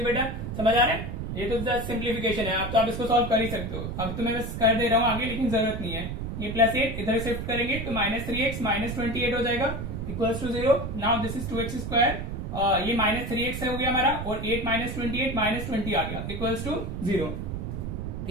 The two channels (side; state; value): right; noise; rumble, 5 dB below the sound